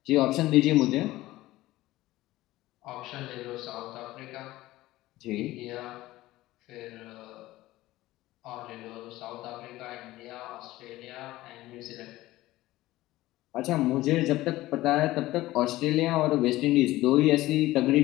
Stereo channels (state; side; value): quieter; right; 17.1 dB